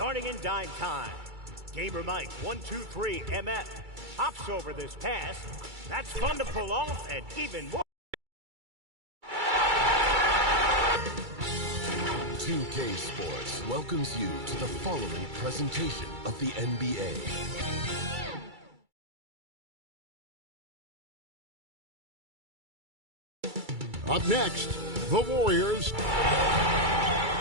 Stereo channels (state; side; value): late; left; 2.3 ms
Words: in dime time, Gamer Mike 123 MF hops over this pass. That's fun to pull off and even more. 2K Sports welcomes you to the following presentation of the NBA. Up next, the Warriors.